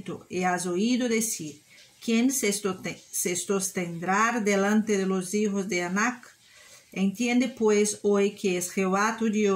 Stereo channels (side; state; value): both; identical; correlation 1.00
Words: y has oído decir, ¿quién se sostendrá delante de los hijos de Anac? Entiende pues hoy que es Jehová tu